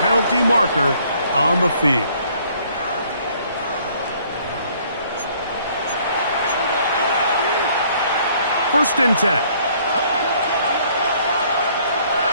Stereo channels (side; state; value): both; inverted; correlation -0.61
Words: marker on the field. First and 10.